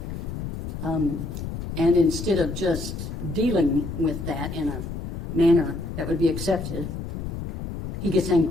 And instead of just dealing with that in a manner that would be accepted, he gets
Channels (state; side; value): noise; left; rumble, 6 dB below the sound